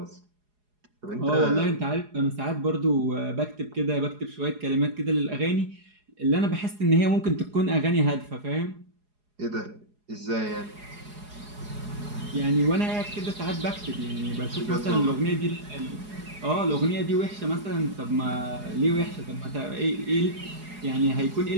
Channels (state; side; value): late; left; 4.8 ms